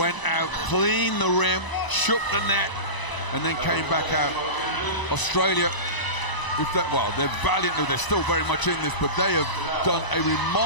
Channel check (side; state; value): right; late; 1.0 ms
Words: out, cleaned the rim, shook the net, and then came back out. Australia, they're valiant, they're still very much in this, but they have done a